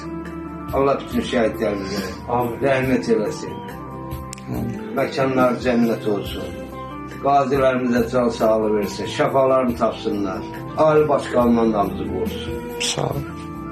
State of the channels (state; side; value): identical; both; correlation 1.00